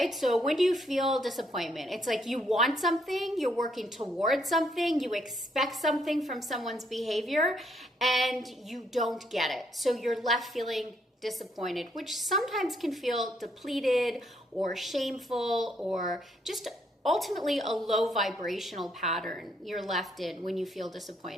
So when do you feel disappointment? It's like you want something, you're working towards something, you expect something from someone's behavior, and you don't get it. So you're left feeling disappointed, which sometimes can feel depleted or shameful or just ultimately a low vibrational pattern you're left in when you feel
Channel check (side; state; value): both; normal; correlation 0.72